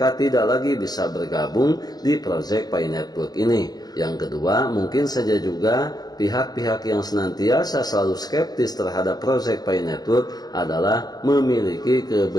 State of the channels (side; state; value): right; late; 0.19 ms